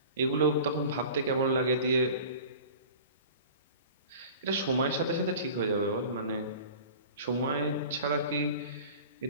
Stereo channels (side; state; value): both; inverted; correlation -0.40